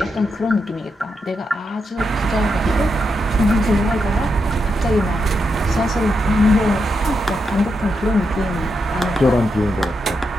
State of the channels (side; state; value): both; normal; correlation 0.84